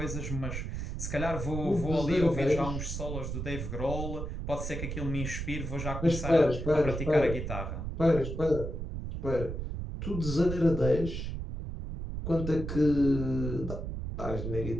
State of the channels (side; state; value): right; noise; rumble, 5 dB below the sound